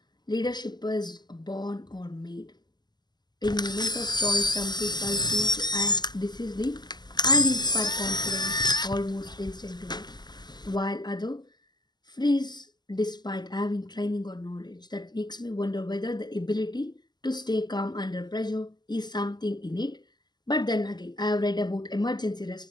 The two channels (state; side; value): late; right; 0.21 ms